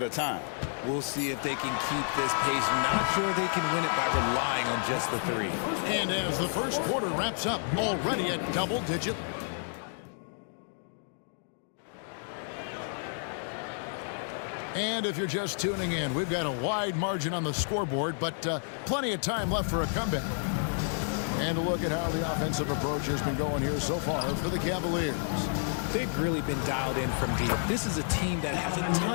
a time. We'll see if they can keep this pace. Not sure they can win it by relying on just the three. And as the first quarter wraps up, already at double digit. And if you're just tuning in, we've got a wide margin on the scoreboard, but plenty of time left for a comeback. And a look at how the offensive approach has been going here so far for the Cavaliers. They've really been dialed in from deep. This is a team that has a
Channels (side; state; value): right; silent; digital silence